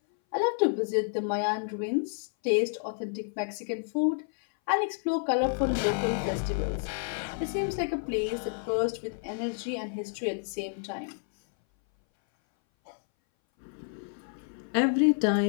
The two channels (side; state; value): right; silent; 58 dB below the other